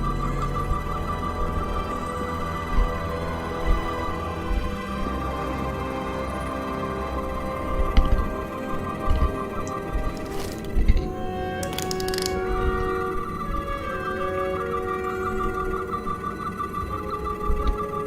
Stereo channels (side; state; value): both; identical; correlation 1.00